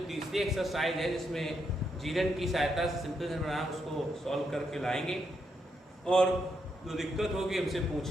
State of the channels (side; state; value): both; normal; correlation 0.80